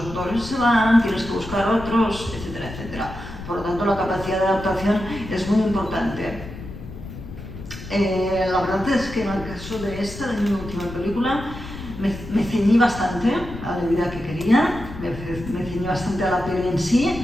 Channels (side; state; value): left; noise; rumble, 12 dB below the sound